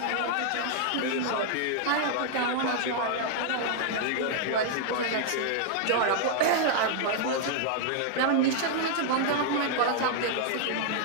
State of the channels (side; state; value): both; different; correlation -0.01